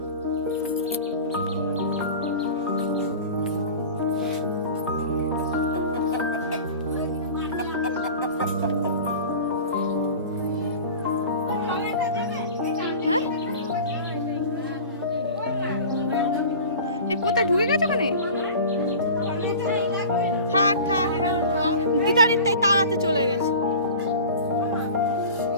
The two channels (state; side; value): inverted; both; correlation -0.37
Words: কোথায় ঢুকে গেছে ওখানে? থাক থাক, দিদারির তাই তাড়াতে চলে গেছে।